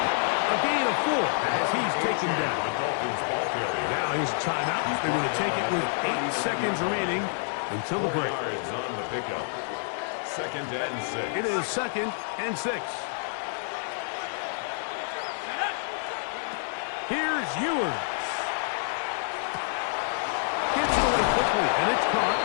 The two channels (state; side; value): silent; right; digital silence